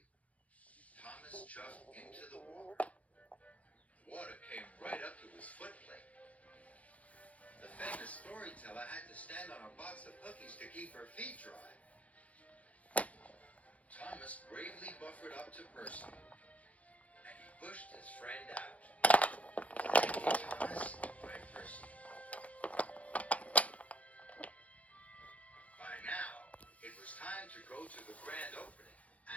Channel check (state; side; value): late; right; 0.067 ms